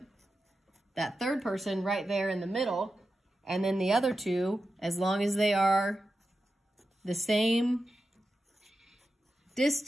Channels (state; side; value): normal; both; correlation 0.91